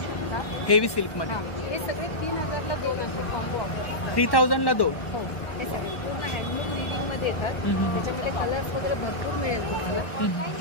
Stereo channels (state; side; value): late; right; 1.1 ms